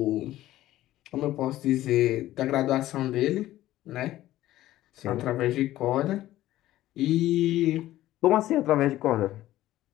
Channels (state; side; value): quieter; right; 14.8 dB